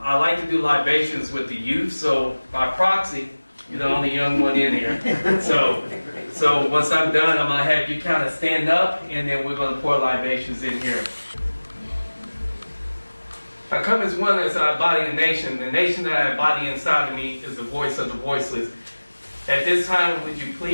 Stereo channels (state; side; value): inverted; both; correlation -1.00